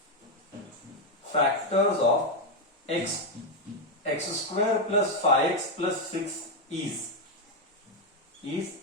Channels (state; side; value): normal; both; correlation 0.05